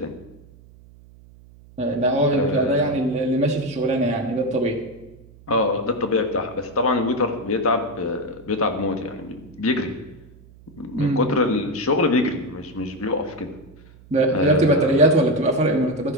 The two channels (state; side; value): noise; right; hum, 24 dB below the sound